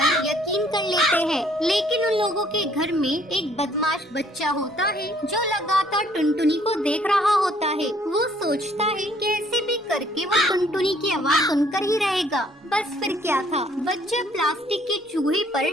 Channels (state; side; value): normal; both; correlation 0.62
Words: यकीन कर लेते हैं, लेकिन उन लोगों के घर में एक बदमाश बच्चा होता है जो लगातार टुनटुनी को देख रहा होता है। वो सोचता है कैसे भी करके वो टुनटुनी की आवाज सुनकर ही रहेगा। बस फिर क्या था, बच्चा प्लास्टिक के चूहे पर